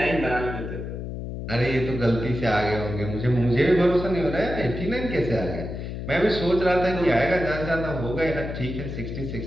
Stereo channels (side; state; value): left; noise; hum, 6 dB below the sound